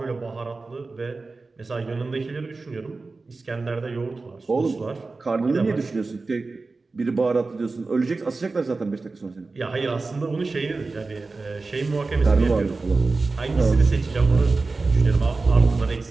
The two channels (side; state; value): left; quieter; 3.8 dB